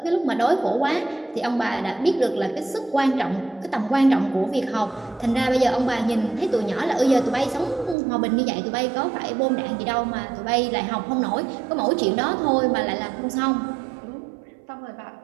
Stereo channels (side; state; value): left; drops out; at 8.0 s